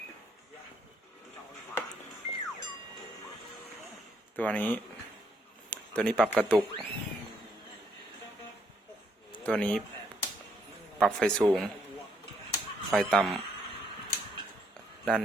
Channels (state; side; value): normal; both; correlation 0.72